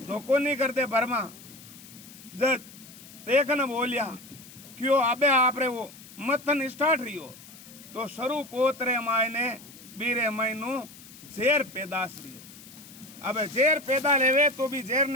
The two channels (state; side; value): noise; left; hiss, 19 dB below the sound